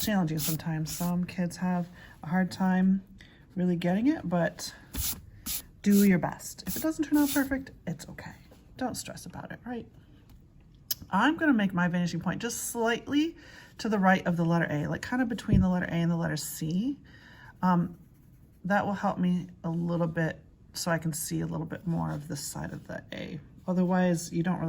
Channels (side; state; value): both; identical; correlation 1.00